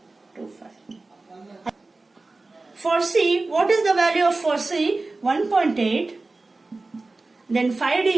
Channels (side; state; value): left; quieter; 3.4 dB